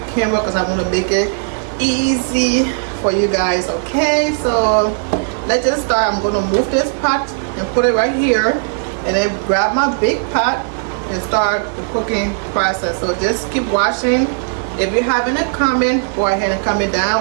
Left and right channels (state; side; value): silent; left; digital silence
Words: camera because I want to make it easy for you guys. Okay, so let's just start. I'm going to move this pot and put it right here, and then grab my big pot and start the cooking process. So just keep watching. If you have any comment, go ahead and comment